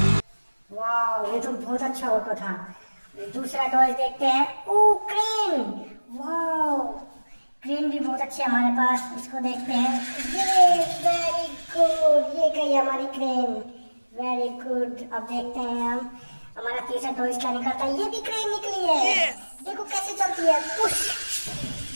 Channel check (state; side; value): inverted; both; correlation -1.00